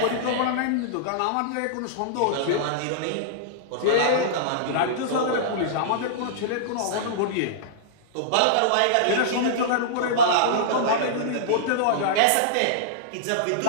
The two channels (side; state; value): both; different; correlation -0.02